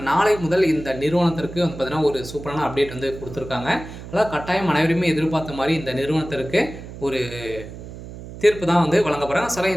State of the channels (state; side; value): noise; right; hum, 13 dB below the sound